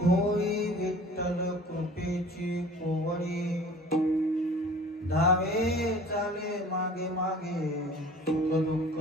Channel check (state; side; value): normal; both; correlation 0.46